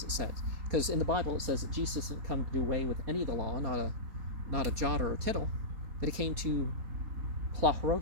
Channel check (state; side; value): late; left; 4.3 ms